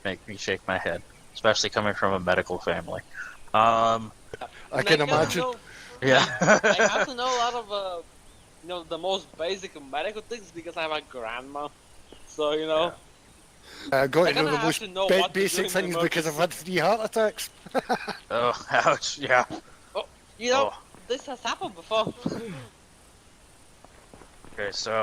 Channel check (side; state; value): both; identical; correlation 1.00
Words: make me shake my head, especially coming from a medical family. I can imagine. Yeah. I have to know a lot of the most basic medical things because I have a grandma. So I got to know the have most to know what to basic do in things because I've had 3 heart attacks. Oh, ouch! Yeah. This has happened before. Okay,